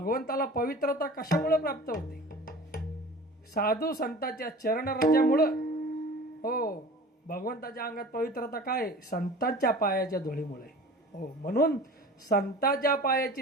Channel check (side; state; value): both; normal; correlation 0.41